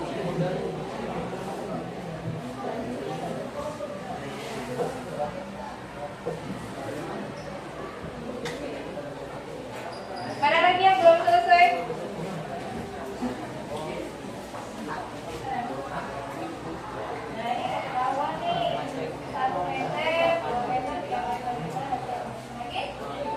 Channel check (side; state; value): both; identical; correlation 1.00